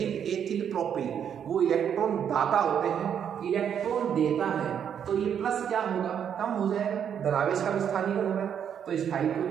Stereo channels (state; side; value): quieter; left; 8.4 dB